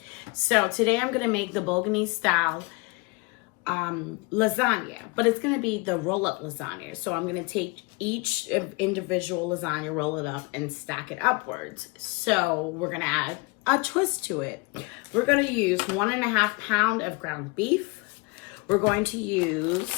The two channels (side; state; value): right; quieter; 28.3 dB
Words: So today I'm going to make the Bolognese style lasagna, but it's going to be the roll-up lasagna. So I'm going to take each individual lasagna, roll it up, and stack it upwards. So we're going to add a twist to it. We're going to use 1.5 pounds of ground beef. We're going to